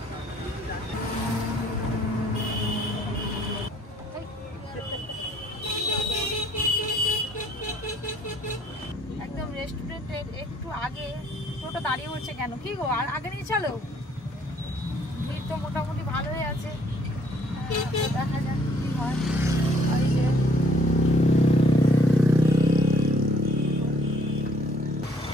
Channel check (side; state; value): both; normal; correlation 0.62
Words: একদম রেস্টুরেন্টের একটু আগে টোটো দাঁড়িয়ে পড়ছে কেন? কি গো, আর আগে নিয়ে চলো। ভিড় তো মোটামুটি ভালোই আছে, দেখা যাক কি হয়। ওই যে